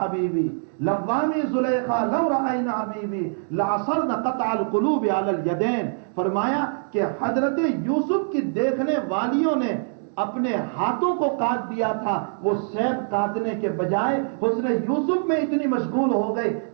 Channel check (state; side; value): silent; left; digital silence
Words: حبیبی، لوامی زلیخا لو رأینا حبیبی لعصرن قطع القلوب علی الیدین، فرمایا کہ حضرت یوسف کی دیکھنے والیوں نے اپنے ہاتھوں کو کاٹ دیا تھا، وہ سیب کاٹنے کے بجائے حسن یوسف میں اتنی مشغول ہو گئے